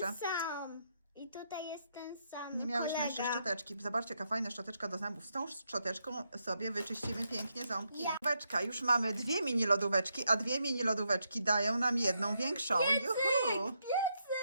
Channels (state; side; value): inverted; both; correlation -0.80